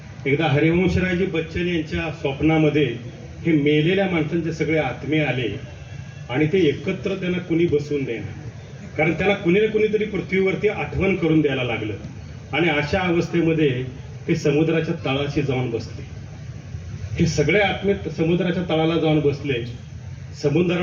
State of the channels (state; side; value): identical; both; correlation 1.00